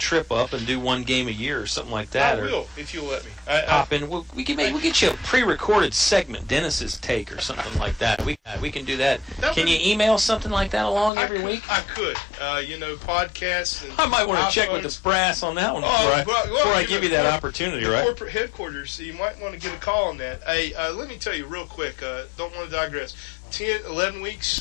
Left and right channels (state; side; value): drops out; right; at 11.1 s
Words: up and do one game a year or something like that? I will, if you'll let me. Pop in. We'll get you a pre-recorded segment, Dennis's take or something like that. We can do that. Can you email something like that along every week? I could. Podcasts. And I might want to check with the brass on that one before I give you that opportunity, right? Corporate headquarters, so you might want to get a call on that. Hey, let me tell you real quick. Don't want to digress. 11